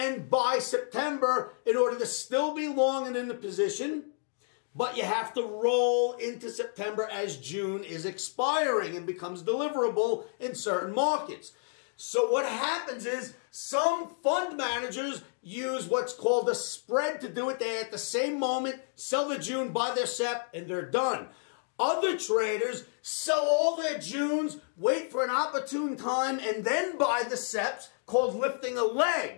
buy September in order to still be long and in the position. But you have to roll into September as June is expiring and becomes deliverable in certain markets. So what happens is some fund managers use what's called a spread to do it. They at the same moment sell the June, buy their SEP, and they're done. Other traders sell all their Junes, wait for an opportune time, and then buy the SEPs, called lifting a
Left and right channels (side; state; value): right; silent; 58 dB below the other